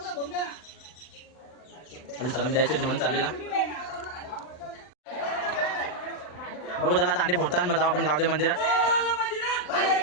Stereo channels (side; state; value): right; late; 39 ms